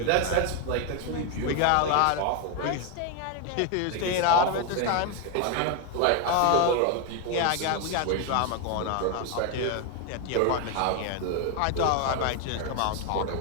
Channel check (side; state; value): both; different; correlation 0.01